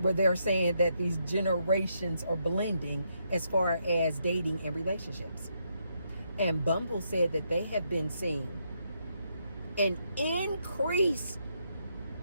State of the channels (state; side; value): inverted; both; correlation -0.78